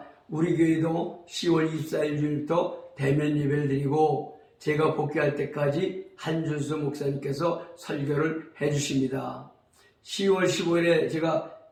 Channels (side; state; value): both; identical; correlation 1.00